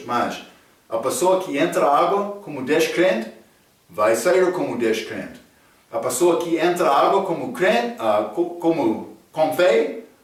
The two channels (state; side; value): identical; both; correlation 1.00